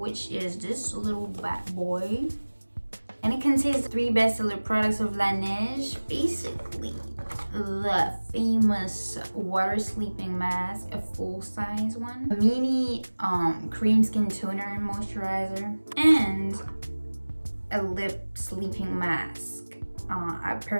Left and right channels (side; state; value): both; inverted; correlation -1.00